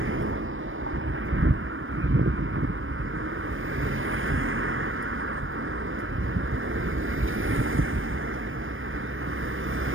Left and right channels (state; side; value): late; left; 0.59 ms